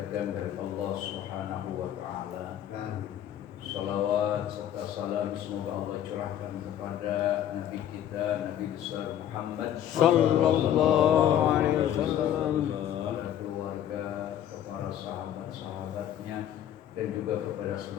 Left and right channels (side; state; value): right; quieter; 10.8 dB